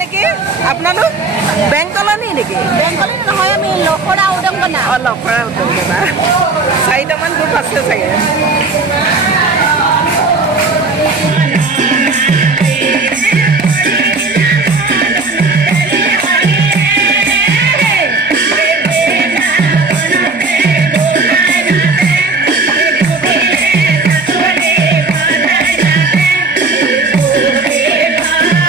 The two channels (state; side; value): quieter; left; 3.8 dB